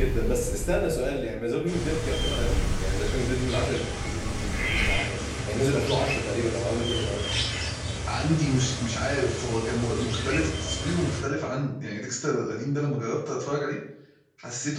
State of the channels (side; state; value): both; identical; correlation 1.00